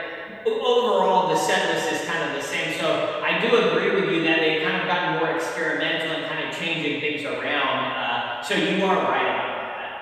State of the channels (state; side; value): identical; both; correlation 1.00